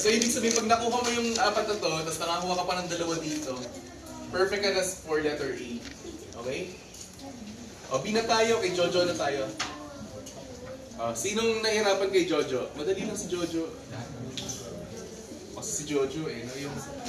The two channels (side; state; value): both; identical; correlation 1.00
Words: ibig sabihin, pag nakuha mo yung 4 na to, tapos nakakuha ka pa ng 2 dito, perfect ka na for letter A. Okay? O, B na tayo, kay Jojo na tayo. Sinong nahirapan kay Jojo? Madali lang si Jojo. Kasi si Jojo no?